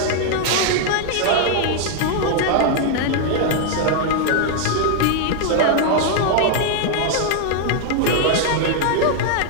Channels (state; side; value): different; both; correlation 0.00